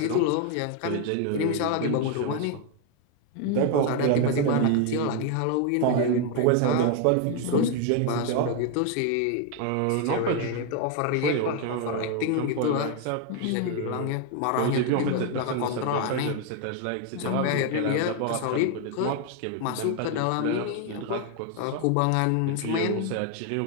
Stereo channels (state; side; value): different; both; correlation 0.01